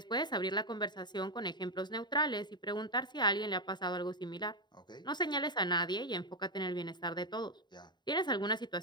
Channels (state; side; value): late; right; 0.21 ms